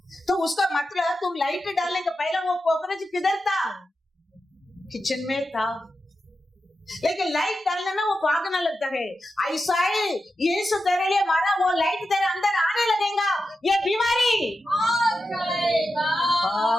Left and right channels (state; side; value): normal; both; correlation 0.90